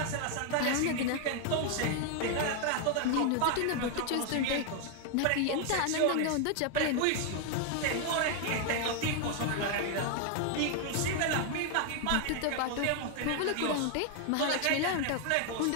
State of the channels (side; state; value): both; different; correlation 0.00